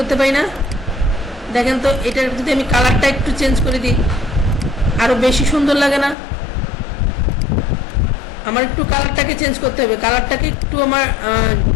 পারি না? দেখেন তো এটার যদি আমি কালারটা একটু চেঞ্জ করে দিই আরো বেশি সুন্দর লাগে না? আমার একটু কালারটাকে চেঞ্জ করতে হবে, কালারটাকে একটু আমার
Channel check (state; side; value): drops out; right; at 6.2 s